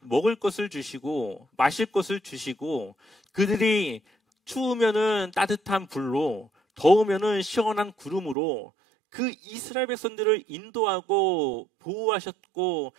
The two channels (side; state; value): left; drops out; at 8.3 s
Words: 먹을 것을 주시고 마실 것을 주시고, 그들이 추우면은 따뜻한 불로, 더우면은 시원한 구름으로 그 이스라엘 백성들을 인도하고 보호하셨고